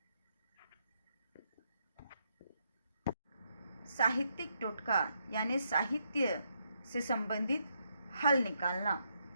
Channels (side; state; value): both; inverted; correlation -0.77